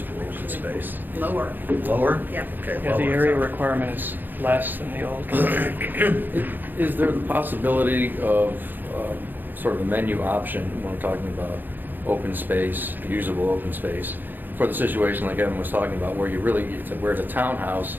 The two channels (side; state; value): left; late; 0.089 ms